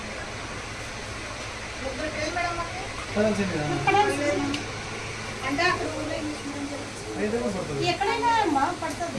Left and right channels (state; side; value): identical; both; correlation 1.00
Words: అంటే అక్కడ ఎక్కడైనా అమ్మా